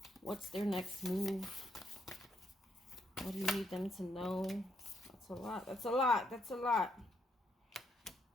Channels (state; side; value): normal; both; correlation 0.75